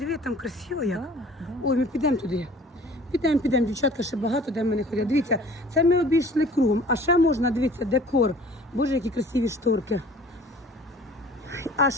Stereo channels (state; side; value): normal; both; correlation 0.49